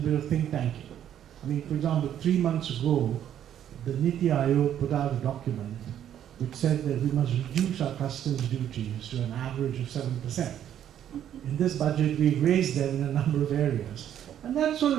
bit of think tanking. For example, 3 months ago, the Niti Aayog put out a document which said that we must reduce our customs duties to an average of 7%. In this budget, we've raised them in a number of areas. And that sort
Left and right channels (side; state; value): left; quieter; 10.3 dB